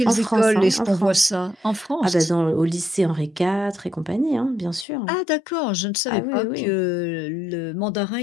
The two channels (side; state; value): right; drops out; at 4.9 s